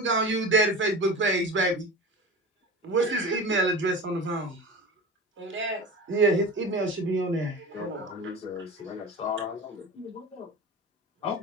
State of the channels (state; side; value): normal; both; correlation 0.31